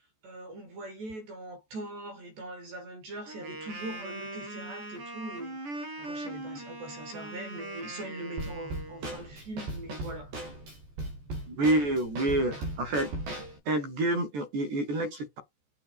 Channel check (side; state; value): left; late; 14 ms